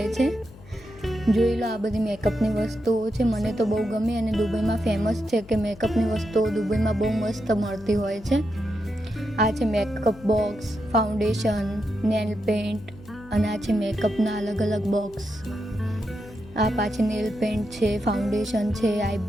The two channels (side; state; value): left; noise; hum, 21 dB below the sound